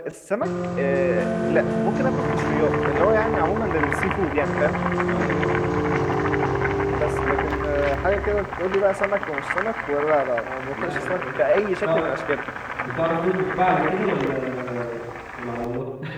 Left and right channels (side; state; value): both; identical; correlation 1.00